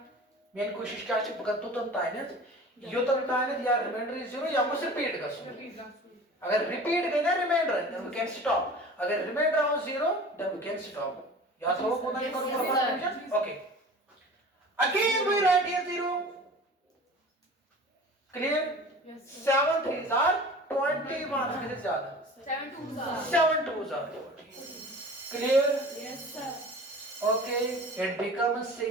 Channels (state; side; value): normal; both; correlation 0.40